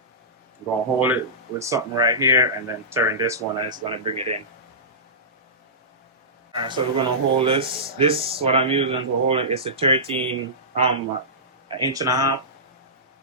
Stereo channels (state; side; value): normal; both; correlation -0.18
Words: going to hold it with something right here and then turn this one and it's going to bring it in. So we're going to hold this. This, what I'm using to hold it, is a 13, an inch and a half.